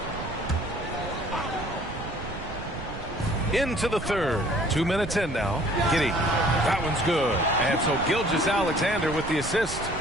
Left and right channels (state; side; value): noise; right; rumble, 10 dB below the sound